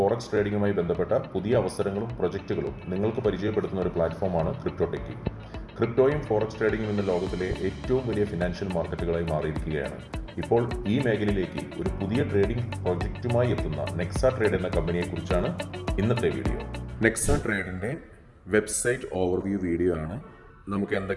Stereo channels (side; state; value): both; identical; correlation 1.00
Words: ട്രേഡിംഗുമായി ബന്ധപ്പെട്ട പുതിയ അവസരങ്ങളും പ്രൊജക്റ്റുകളും നിങ്ങൾക്ക് പരിചയപ്പെടുത്തുന്ന ഒരു പ്ലാറ്റ്ഫോമാണ് ക്രിപ്റ്റോ ടെക്കി. ക്രിപ്റ്റോയും ഫോറക്സ് ട്രേഡിംഗും ഇന്ന് ലോകത്തിലെ ഏറ്റവും വലിയ ഫിനാൻഷ്യൽ മാർക്കറ്റുകളായി മാറിയിരിക്കുകയാണ്. ഇപ്പോൾ ഈ മേഖലയിലേക്ക് ഒരു പുതിയ ട്രേഡിംഗ് പ്രൊജക്റ്റുമായി എത്തുന്ന നെക്സ ട്രേഡ് എന്ന കമ്പനിയെക്കുറിച്ചാണ് ഇന്നത്തെ വീഡിയോ. നെക്സ ട്രേഡിൻ്റെ വെബ്സൈറ്റ് ഓവർവ്യൂ വീഡിയോ ആണ്. നമുക്ക്